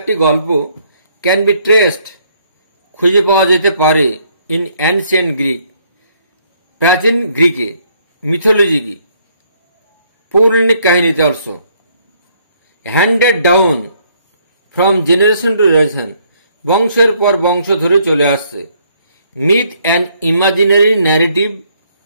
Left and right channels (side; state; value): both; inverted; correlation -0.67